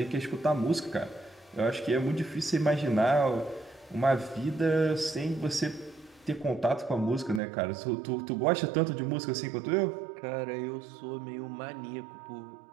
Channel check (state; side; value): drops out; left; at 7.4 s